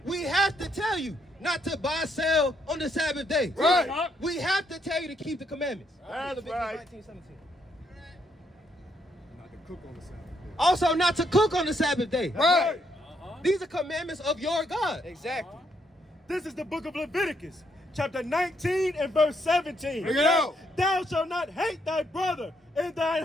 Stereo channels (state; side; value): normal; both; correlation 0.74